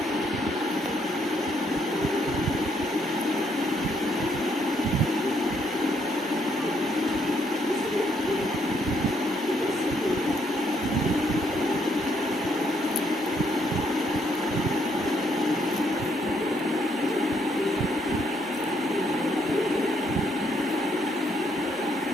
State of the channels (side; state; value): both; normal; correlation 0.72